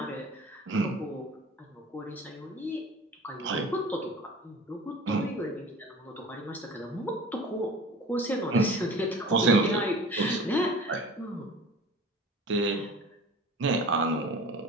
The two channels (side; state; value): both; normal; correlation 0.40